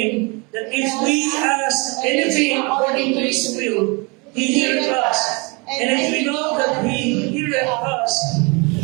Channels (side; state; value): left; quieter; 29.6 dB